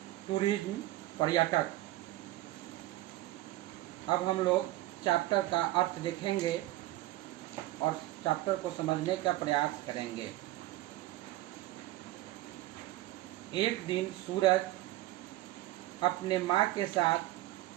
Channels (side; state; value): left; quieter; 16.4 dB